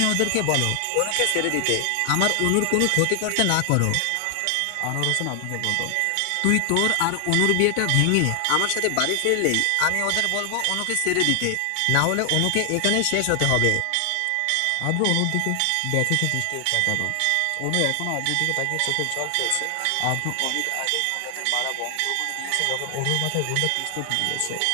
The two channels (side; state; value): both; different; correlation 0.00